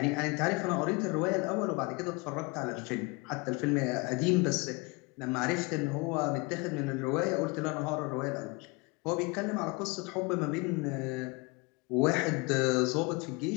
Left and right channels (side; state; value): right; quieter; 27.3 dB